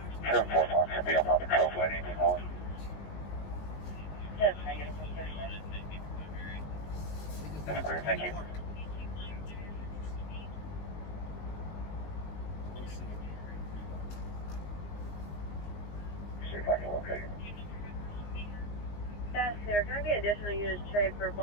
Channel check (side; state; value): right; late; 19 ms